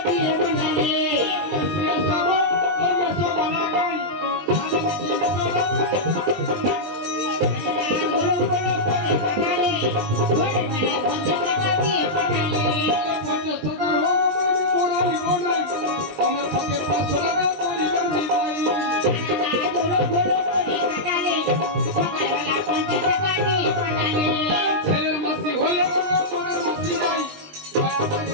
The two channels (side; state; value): left; late; 20 ms